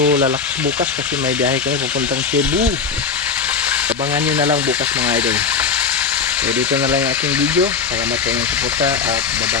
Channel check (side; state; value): right; quieter; 5.6 dB